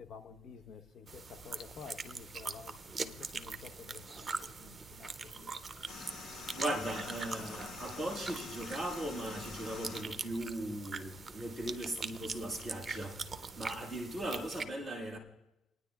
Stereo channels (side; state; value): both; normal; correlation 0.79